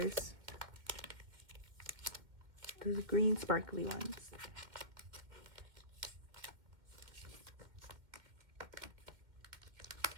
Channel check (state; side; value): late; left; 1.9 ms